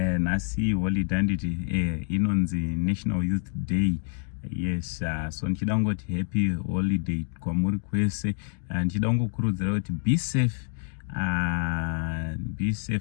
nhasi holiday handiti inonzi National Youth Day. Yes, so ndichida kungoti happy holiday kwamuri kwese. Ndichida kungokurudzira kuti be safe. Be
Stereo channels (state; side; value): silent; right; digital silence